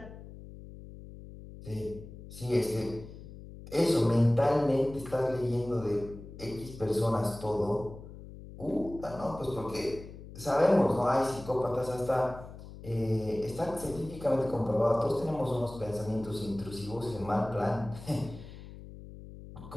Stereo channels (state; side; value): noise; left; hum, 15 dB below the sound